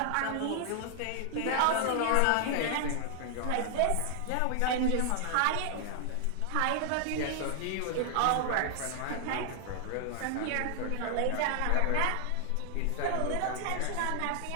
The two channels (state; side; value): different; both; correlation 0.00